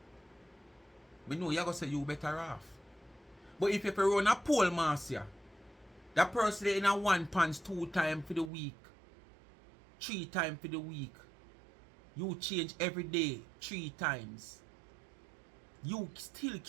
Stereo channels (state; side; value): drops out; left; at 8.5 s